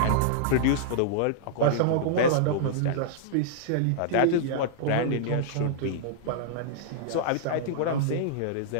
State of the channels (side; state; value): both; different; correlation -0.01